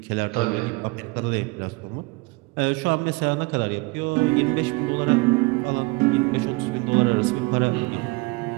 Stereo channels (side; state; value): left; quieter; 25.6 dB